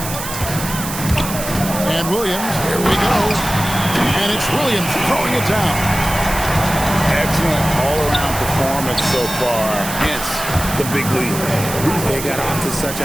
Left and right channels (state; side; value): noise; right; hiss, 8 dB below the sound